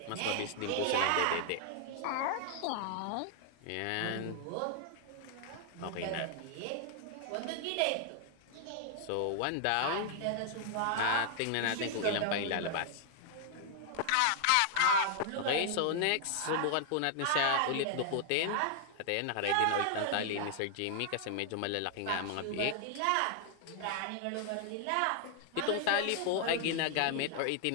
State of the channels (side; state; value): both; different; correlation 0.00